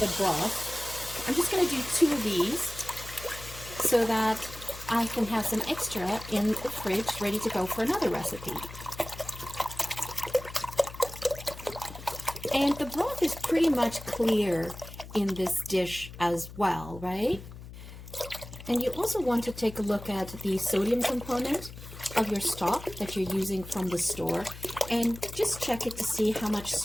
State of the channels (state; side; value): noise; left; hum, 14 dB below the sound